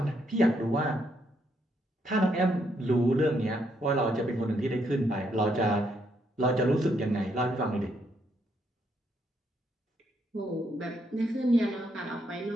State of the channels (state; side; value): normal; both; correlation 0.74